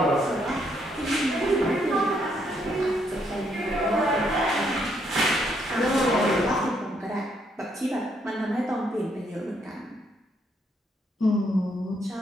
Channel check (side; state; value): both; normal; correlation 0.73